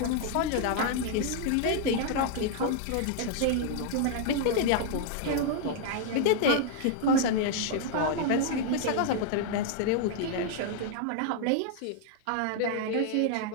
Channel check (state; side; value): different; both; correlation 0.00